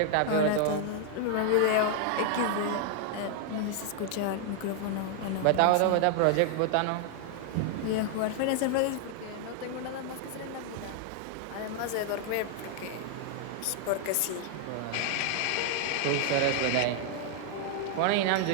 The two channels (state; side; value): different; both; correlation 0.00